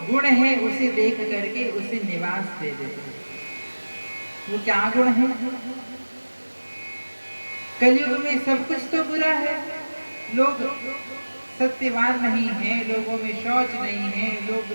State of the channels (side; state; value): both; inverted; correlation -1.00